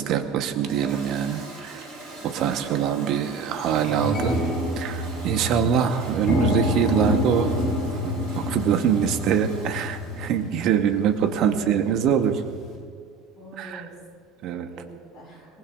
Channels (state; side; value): quieter; left; 5.4 dB